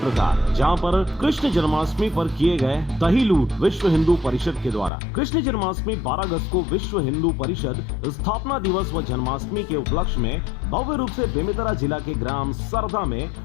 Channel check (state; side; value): drops out; right; at 4.9 s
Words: का, जहां पर कृष्ण जन्माष्टमी पर किए गए दही लूट विश्व हिंदू परिषद के द्वारा। कृष्ण जन्माष्टमी 12 अगस्त को विश्व हिंदू परिषद स्थापना दिवस व जन्माष्टमी के उपलक्ष्य में भव्य रूप से बेमेतरा जिला के ग्राम सरदा में